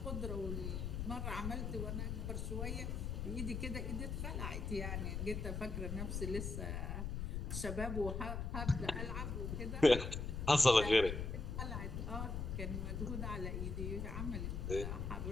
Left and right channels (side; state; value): left; noise; rumble, 3 dB below the sound